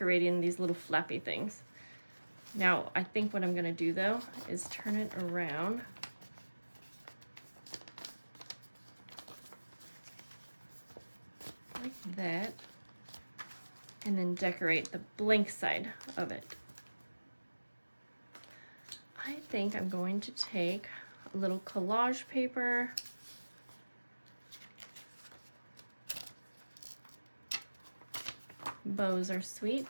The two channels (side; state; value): both; inverted; correlation -1.00